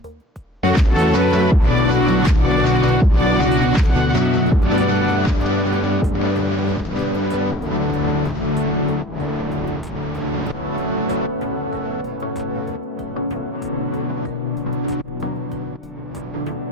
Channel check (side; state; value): both; normal; correlation 0.48